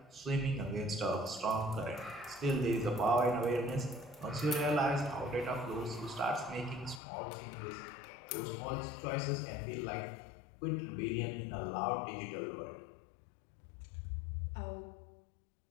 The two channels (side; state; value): right; drops out; at 7.0 s